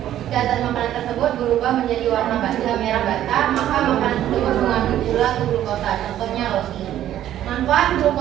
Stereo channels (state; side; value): quieter; left; 12.0 dB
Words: Jika zat makanan tersebut berubah menjadi warna merah bata, maka makanan tersebut mengandung gula atau glukosa. Contohnya roti. Manfaat